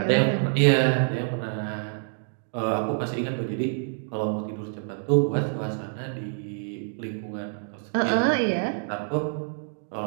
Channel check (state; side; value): silent; left; 60 dB below the other